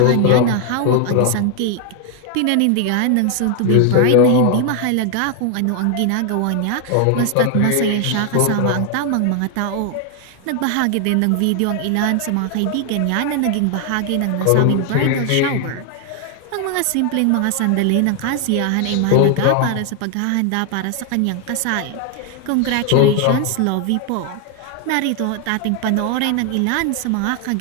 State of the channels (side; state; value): both; different; correlation 0.00